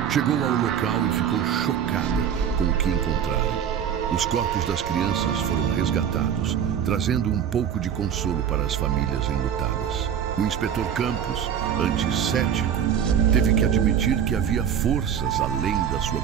chegou ao local e ficou chocada com o que encontraram. Os corpos das crianças foram resgatados, trazendo um pouco de consolo para as famílias enlutadas. O inspetor Campos, antes cético, teve que admitir que havia forças além da sua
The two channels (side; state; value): left; quieter; 8.6 dB